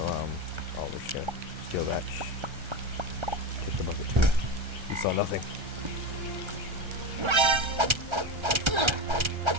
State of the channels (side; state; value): left; late; 1.3 ms